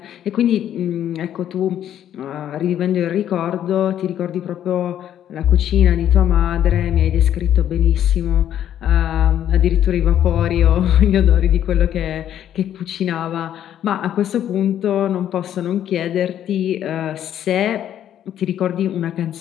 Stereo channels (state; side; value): quieter; right; 10.7 dB